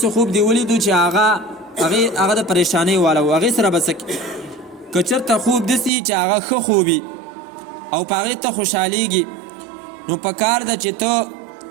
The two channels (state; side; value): drops out; left; at 5.9 s